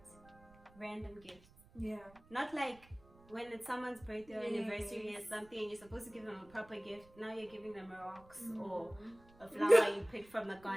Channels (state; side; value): noise; right; rumble, 25 dB below the sound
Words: random gifts. Yeah. Not like when it's someone's birthday or anniversary or something and you're supposed to give them a proper gift. Now you're giving them rocks or a flower you picked from the